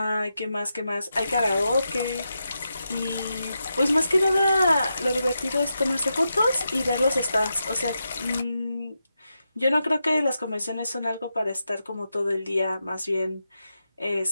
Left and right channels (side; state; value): both; inverted; correlation -0.87